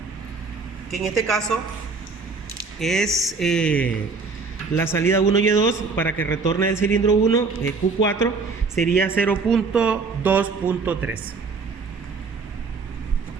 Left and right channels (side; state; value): left; quieter; 4.5 dB